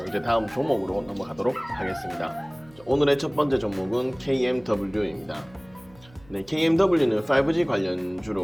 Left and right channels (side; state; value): right; noise; hum, 25 dB below the sound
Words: 이제 다음 종목으로 넘어가도록 하겠습니다. 오늘의 첫 번째 종목은 KMW입니다. KMW는 5G